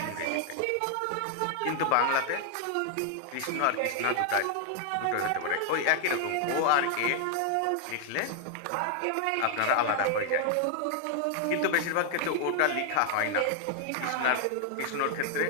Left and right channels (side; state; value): both; different; correlation 0.00